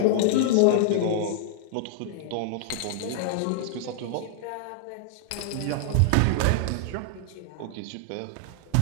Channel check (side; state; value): both; different; correlation -0.01